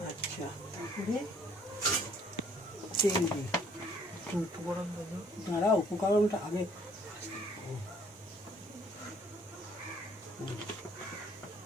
আচ্ছা তেল দিই। দাঁড়া উপকরণটা আগে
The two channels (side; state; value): both; normal; correlation 0.60